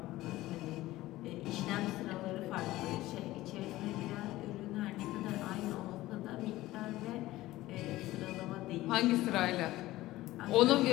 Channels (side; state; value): right; quieter; 16.9 dB